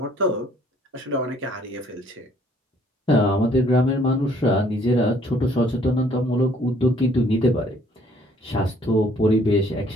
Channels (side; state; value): both; normal; correlation 0.61